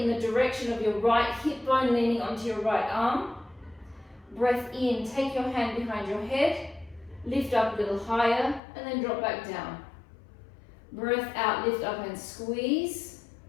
the direction of your right hip bone, leaning onto your right arm. Breath in, take your hand behind your head, lift up a little higher, and then drop back down. Breath out, lift up and squeeze.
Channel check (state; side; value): drops out; right; at 8.6 s